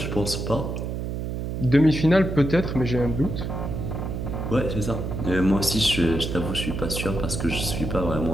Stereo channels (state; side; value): noise; right; hum, 4 dB below the sound